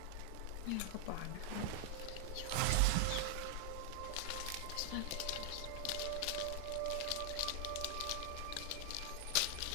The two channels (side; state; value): both; different; correlation 0.00